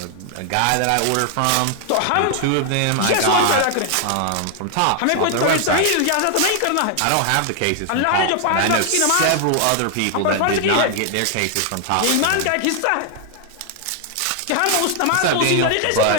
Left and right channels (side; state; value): both; different; correlation 0.00